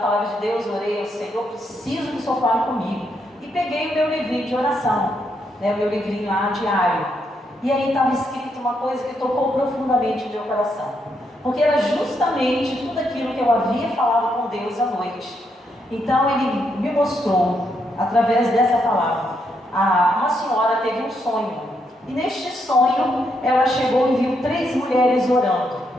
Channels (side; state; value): both; normal; correlation 0.78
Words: de Deus, orei ao Senhor, preciso que o Senhor fale comigo. E peguei o meu livrinho de oração, né, o meu livrinho lá diário. E aí estava escrito uma coisa que tocou profundamente o meu coração. Porque era justamente tudo aquilo que eu havia falado com Deus à noite. Então Ele me mostrou, através dessa palavra, uma senhora teve um sonho. E neste sonho, ela chegou e viu 3 mulheres orando.